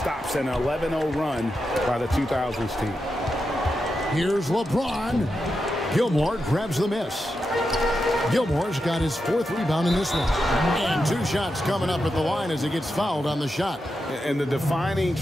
an 11-0 run by the 2000s team. Here's LeBron. Gilmore grabs the miss. Gilmore's got his 4th rebound in this one. And 2 shots coming up at the line as he gets fouled on the shot. And the defining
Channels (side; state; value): both; normal; correlation 0.88